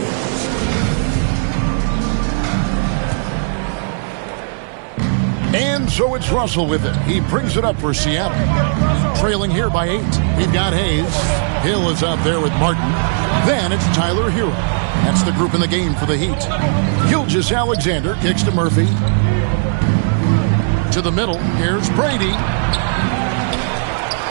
And so it's Russell with it. He brings it up for Seattle. Trailing here by 8. We've got Hayes. Hill is out there with Martin. Then it's Tyler Hero. That's the group in the game for the Heat. Gilgeous-Alexander kicks to Murphy. To the middle. Here's Brady.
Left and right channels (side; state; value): left; silent; digital silence